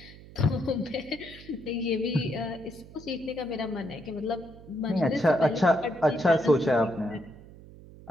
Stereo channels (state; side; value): noise; right; hum, 19 dB below the sound